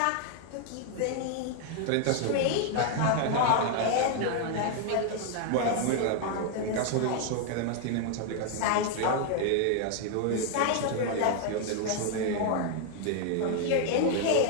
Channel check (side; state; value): both; different; correlation 0.00